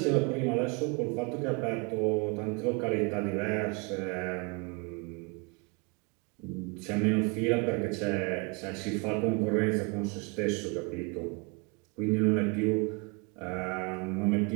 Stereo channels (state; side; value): quieter; left; 31.0 dB